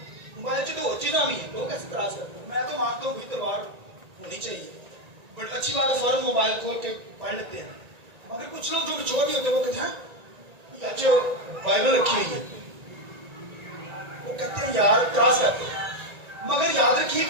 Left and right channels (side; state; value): left; late; 1.9 ms